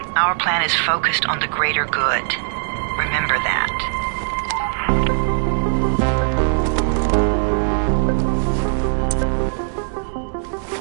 Our plan is focused on the greater good. Remember that.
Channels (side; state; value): left; silent; digital silence